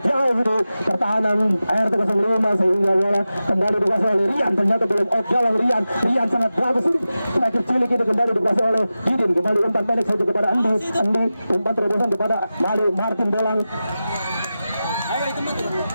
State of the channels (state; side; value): inverted; both; correlation -0.94